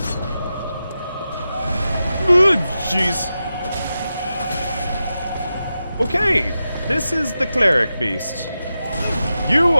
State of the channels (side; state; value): both; inverted; correlation -0.91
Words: Jeez. Okay, this is the cleric beast. You